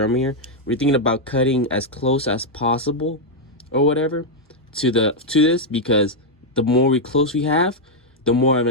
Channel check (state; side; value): normal; both; correlation -0.02